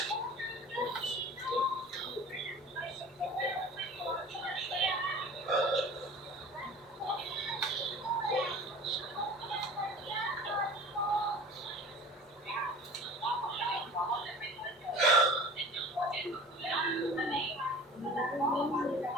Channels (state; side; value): normal; both; correlation 0.41